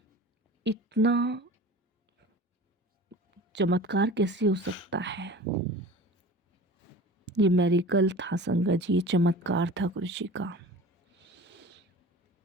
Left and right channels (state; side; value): normal; both; correlation 0.39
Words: इतना चमत्कार कैसे हो सकता है। ये मेरिकल था संगत जी, ये चमत्कार था गुरुजी का।